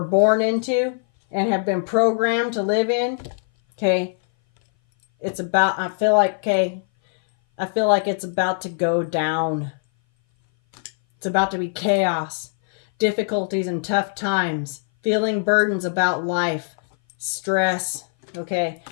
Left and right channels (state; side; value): silent; right; 59 dB below the other